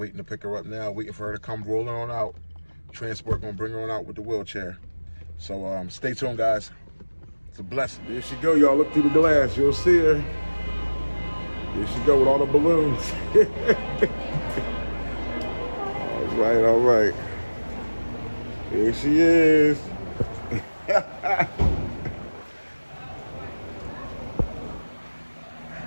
to pick her up now. Waiting for her to come rolling on out. Transport gonna bring her on out with the wheelchair. So stay tuned, guys. It's a blessing. There she go, y'all. Look through the glass. You'll see her. There she go with all the balloons. All right, all right. Here she is.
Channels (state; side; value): inverted; both; correlation -1.00